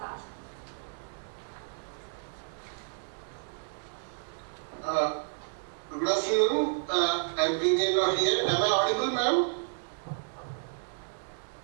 Good afternoon. I'm PVN Rao here. Am I audible, ma'am?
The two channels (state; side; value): silent; left; digital silence